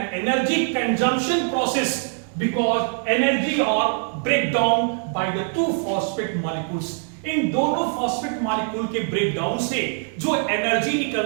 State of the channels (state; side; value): silent; left; 56 dB below the other